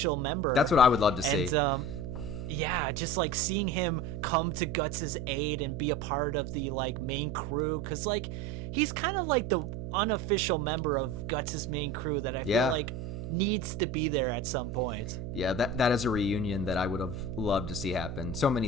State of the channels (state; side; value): noise; right; hum, 7 dB below the sound